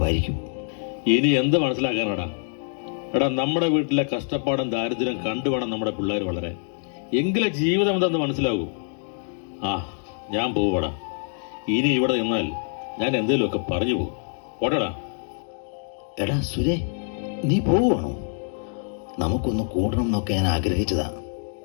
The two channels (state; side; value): silent; right; 62 dB below the other